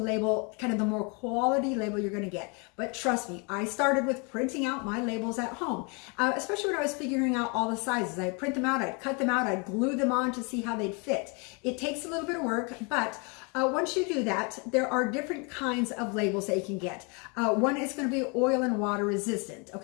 kind of the more quality label you're going to get. But trust me, I started with printing out my labels at home, especially when I was figuring out all the sizes. I'd print them out, I'd cut them out, I'd glue them on to see how they'd fit. It takes a little bit of work, but once you do that, there are different kinds of labels that you can get. One is going to be oil and water resistant.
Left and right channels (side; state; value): right; quieter; 32.6 dB